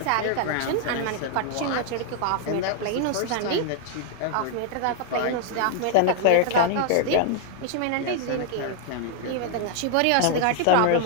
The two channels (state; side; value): different; both; correlation 0.00